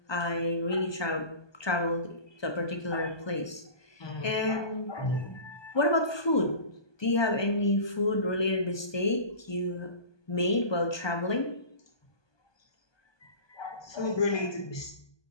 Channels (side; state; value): right; late; 1.2 ms